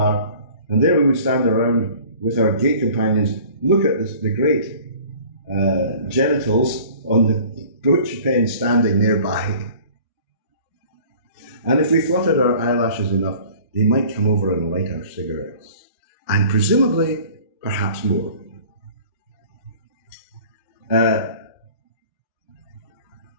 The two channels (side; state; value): both; inverted; correlation -0.48